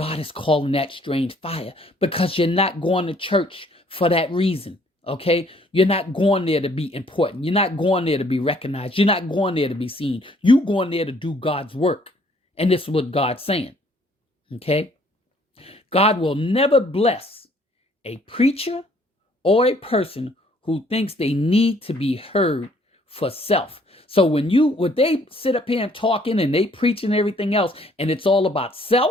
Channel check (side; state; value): both; normal; correlation 0.62